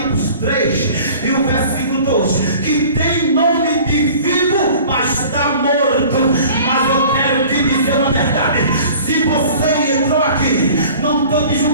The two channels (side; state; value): both; inverted; correlation -0.45